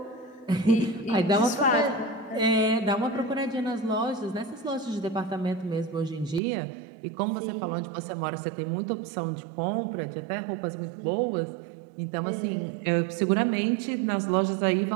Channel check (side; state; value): left; drops out; at 6.4 s